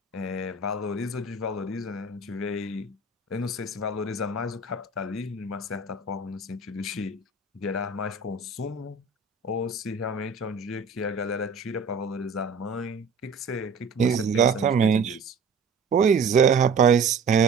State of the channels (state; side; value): quieter; left; 4.3 dB